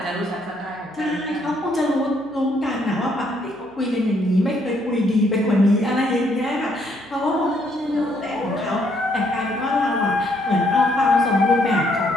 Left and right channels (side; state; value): left; noise; hum, 29 dB below the sound